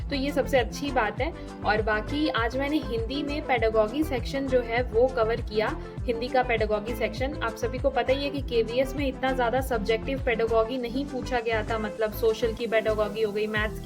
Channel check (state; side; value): identical; both; correlation 1.00